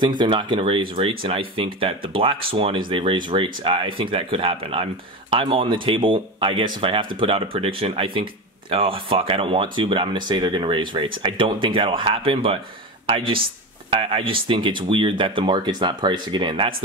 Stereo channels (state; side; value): normal; both; correlation 0.22